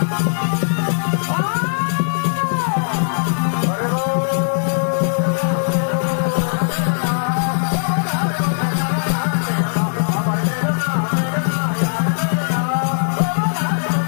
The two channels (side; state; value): right; silent; digital silence